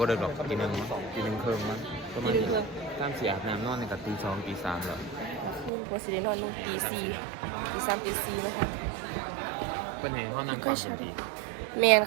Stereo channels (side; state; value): left; drops out; at 5.7 s